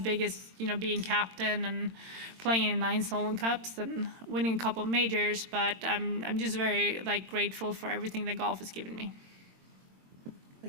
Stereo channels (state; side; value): late; left; 22 ms